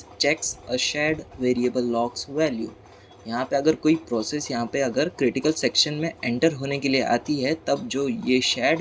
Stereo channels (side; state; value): both; identical; correlation 1.00